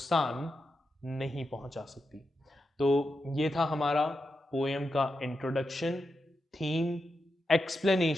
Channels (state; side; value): normal; both; correlation 0.87